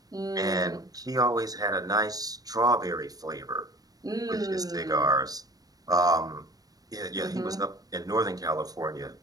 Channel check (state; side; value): late; left; 0.18 ms